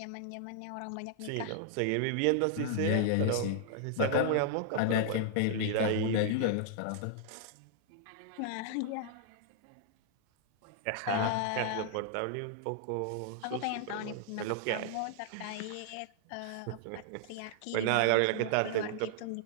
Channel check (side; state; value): both; different; correlation -0.01